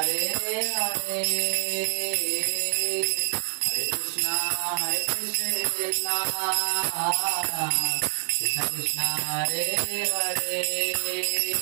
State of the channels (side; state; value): left; silent; 61 dB below the other